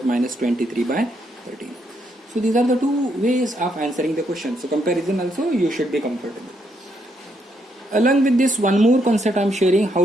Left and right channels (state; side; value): normal; both; correlation 0.76